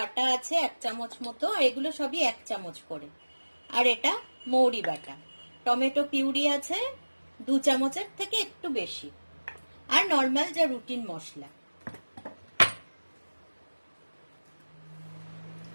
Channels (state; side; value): inverted; both; correlation -1.00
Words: আছে 1 চামচ মতো, আর এগুলো সবই 1 চামচ করে। আর এটা মৌরি বাটা, টমেটো পিউরি আছে 2 চামচের থেকে একটু বেশি, আর নর্মাল যা রুটিন মশলা।